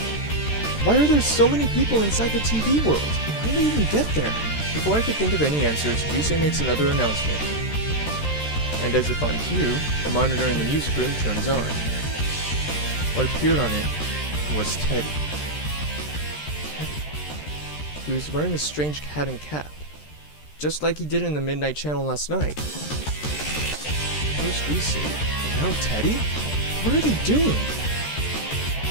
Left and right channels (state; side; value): late; right; 13 ms